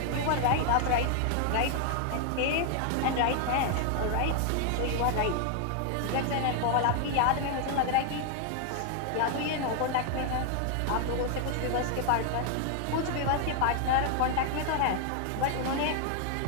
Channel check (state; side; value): different; both; correlation 0.00